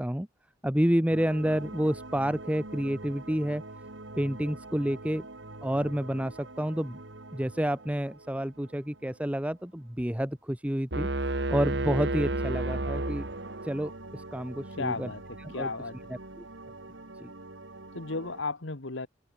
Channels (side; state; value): both; normal; correlation 0.80